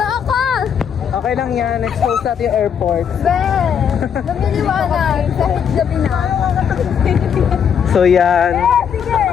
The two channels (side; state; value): right; quieter; 7.8 dB